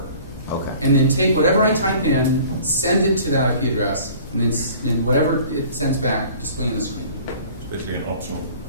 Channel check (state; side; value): inverted; both; correlation -0.48